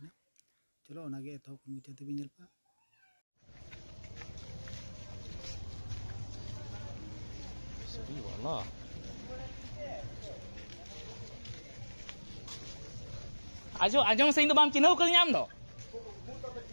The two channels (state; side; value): inverted; both; correlation -1.00